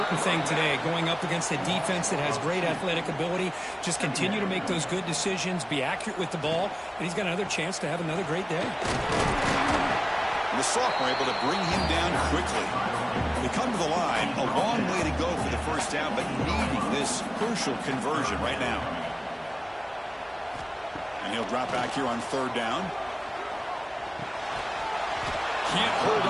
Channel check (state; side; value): identical; both; correlation 1.00